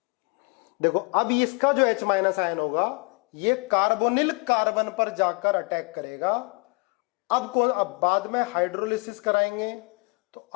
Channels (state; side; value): quieter; right; 31.2 dB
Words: देखो अब इसका जो H माइनस आयन होगा ये कार्बोनिल कार्बन पर जाकर अटैक करेगा। अब बाद में हाइड्रोलिसिस कराएंगे तो